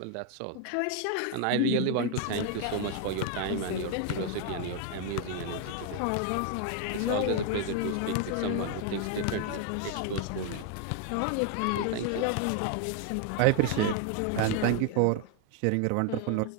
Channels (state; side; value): different; both; correlation 0.01